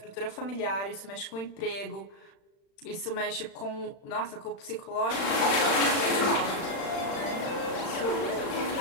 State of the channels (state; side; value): late; right; 36 ms